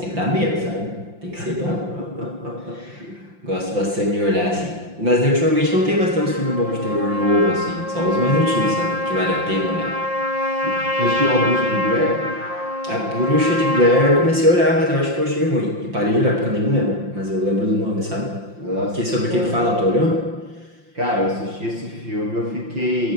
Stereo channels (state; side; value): late; left; 5.7 ms